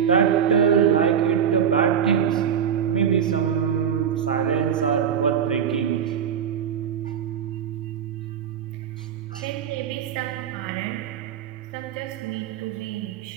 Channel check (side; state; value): left; quieter; 8.2 dB